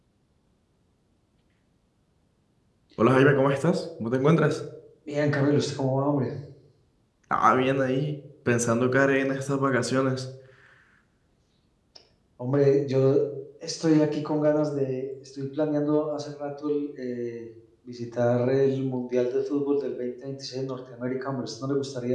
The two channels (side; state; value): both; identical; correlation 1.00